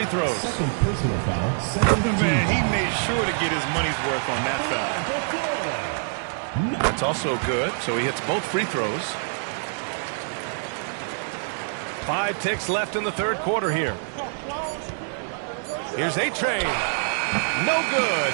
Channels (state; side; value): silent; left; digital silence